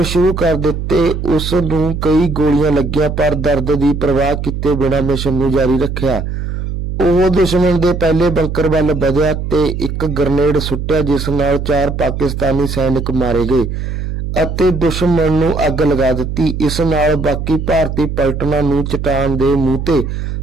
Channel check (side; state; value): right; noise; hum, 4 dB below the sound